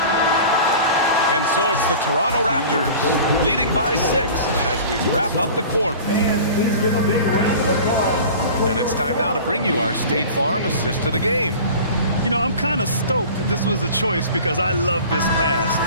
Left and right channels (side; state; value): both; inverted; correlation -0.40